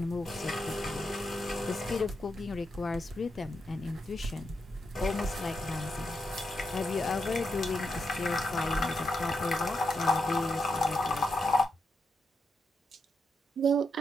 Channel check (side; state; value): both; normal; correlation 0.83